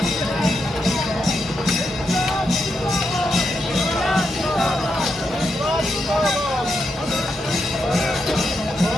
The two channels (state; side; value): normal; both; correlation 0.83